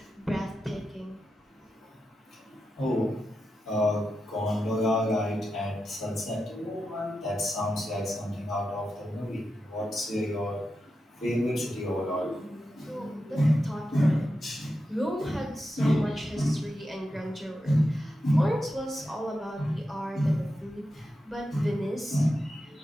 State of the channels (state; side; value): normal; both; correlation 0.89